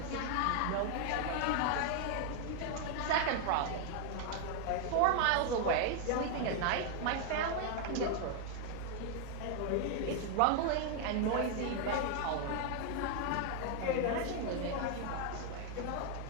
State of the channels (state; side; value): different; both; correlation 0.00